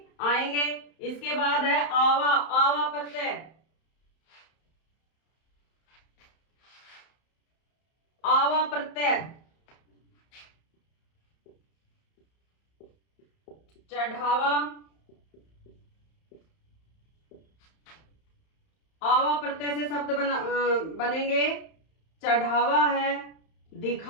आएंगे। इसके बाद है आवा, आवा प्रत्यय, आवा प्रत्यय, चढ़ावा, आवा प्रत्यय से शब्द बनेंगे चढ़ावा है,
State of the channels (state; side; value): late; right; 31 ms